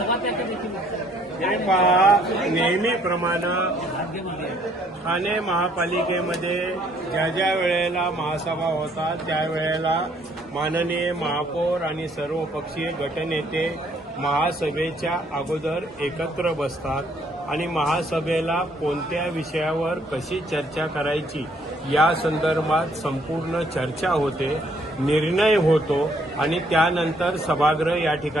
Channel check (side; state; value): both; normal; correlation 0.65